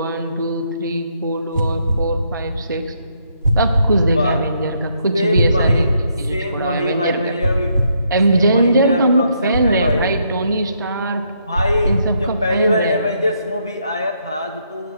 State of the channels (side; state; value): both; inverted; correlation -0.74